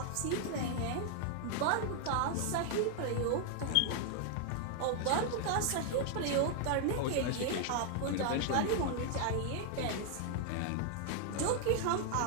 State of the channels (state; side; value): different; both; correlation 0.00